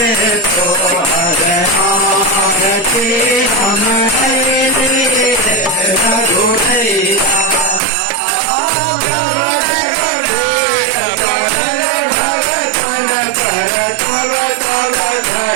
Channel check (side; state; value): left; drops out; at 7.8 s